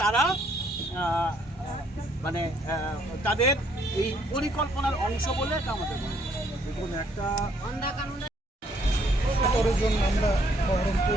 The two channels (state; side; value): normal; both; correlation 0.67